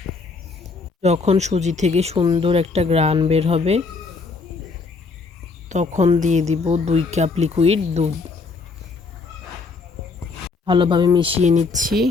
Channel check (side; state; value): right; quieter; 4.2 dB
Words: যখন সুজি থেকে সুন্দর একটা ঘ্রাণ বের হবে তখন দিয়ে দিব 2 কাপ লিকুইড দুধ। ভালোভাবে মিশিয়ে নিচ্ছি।